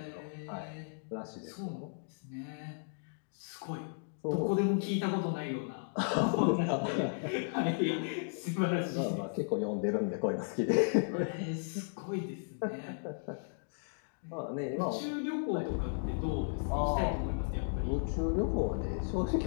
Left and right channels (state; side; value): silent; right; digital silence